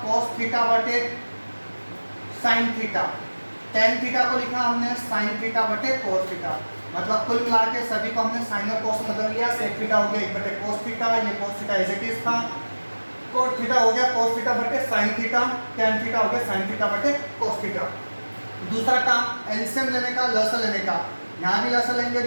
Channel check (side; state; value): both; inverted; correlation -1.00